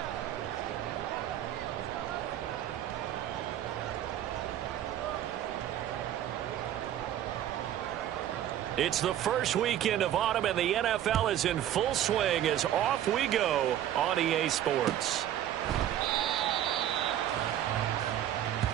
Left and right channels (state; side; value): quieter; left; 11.6 dB